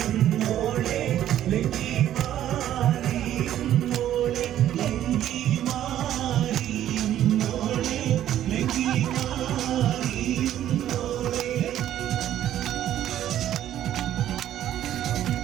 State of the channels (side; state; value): left; quieter; 11.8 dB